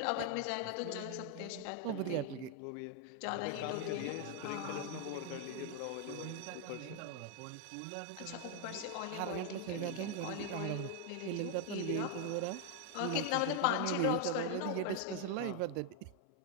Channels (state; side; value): different; both; correlation 0.01